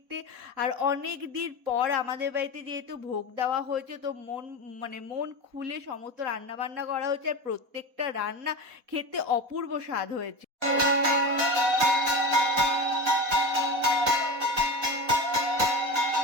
আর অনেক দিন পর আমাদের বাড়িতে যেহেতু ভোগ দেওয়া হয়েছে, তো মন খুলে সমস্ত রান্না বান্না করা হয়েছে, আর প্রত্যেকটা রান্না খেতে অপূর্ব স্বাদ হয়েছে।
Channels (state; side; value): late; left; 4.1 ms